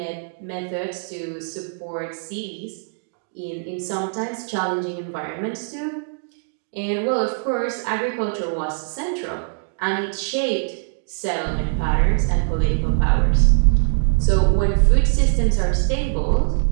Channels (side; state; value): left; silent; digital silence